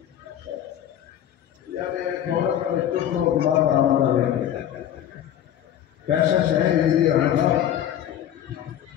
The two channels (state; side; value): quieter; right; 10.8 dB